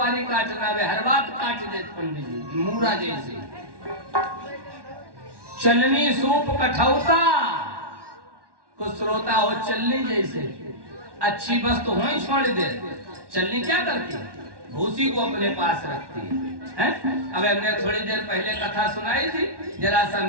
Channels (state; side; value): late; left; 1.1 ms